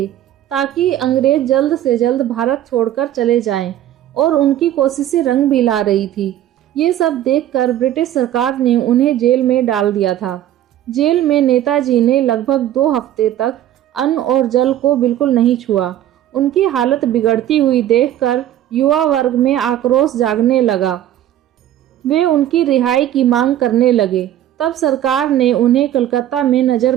ताकि अंग्रेज जल्द से जल्द भारत छोड़कर चले जाएं, और उनकी कोशिशें रंग भी ला रही थी। ये सब देखकर ब्रिटिश सरकार ने उन्हें जेल में डाल दिया था। जेल में नेताजी ने लगभग 2 हफ्ते तक अन्न और जल को बिल्कुल नहीं छुआ। उनकी हालत बिगड़ती हुई देखकर युवा वर्ग में आक्रोश जागने लगा। वे उनकी रिहाई की मांग करने लगे। तब सरकार ने उन्हें कलकत्ता में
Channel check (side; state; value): left; quieter; 12.1 dB